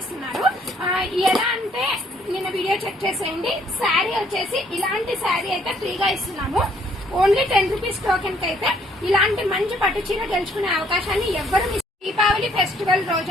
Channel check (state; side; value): normal; both; correlation 0.65